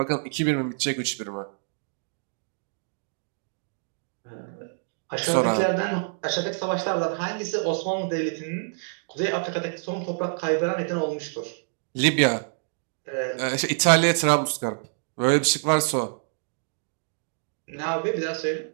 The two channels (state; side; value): silent; left; digital silence